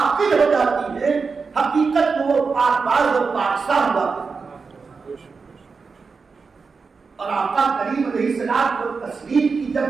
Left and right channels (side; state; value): left; quieter; 4.8 dB